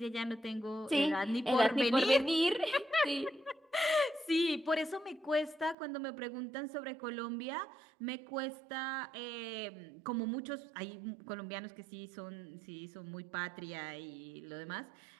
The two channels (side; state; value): left; drops out; at 5.8 s